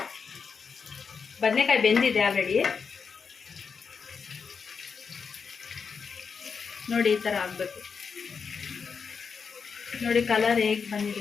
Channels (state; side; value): quieter; right; 5.8 dB